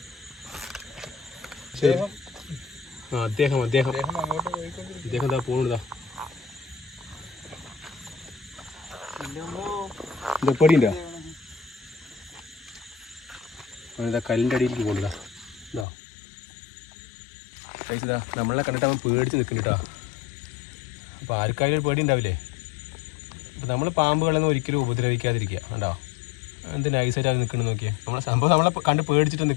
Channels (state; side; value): drops out; right; at 15.9 s